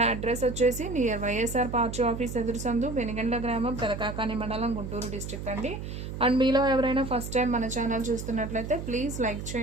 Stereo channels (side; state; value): right; noise; hum, 7 dB below the sound